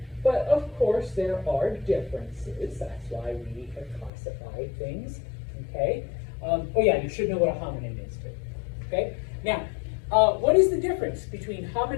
But of course, there are differences. That's why we have classified things. Okay? Oh yeah, you should know what a hominin is too. Okay? Now, what is the difference between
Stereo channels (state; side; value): drops out; right; at 4.1 s